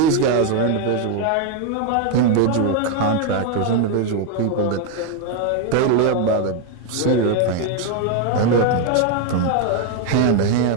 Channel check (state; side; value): different; both; correlation 0.01